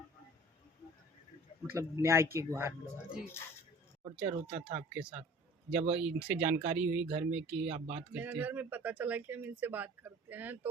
मतलब न्याय की गुहार लगा। जी। टॉर्चर होता था आपके साथ जब इनसे जानकारी हुई घर में कि आप बात करते मेरे हैं? घर में पता चला कि हम इनसे बात करते हैं,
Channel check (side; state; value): both; normal; correlation 0.46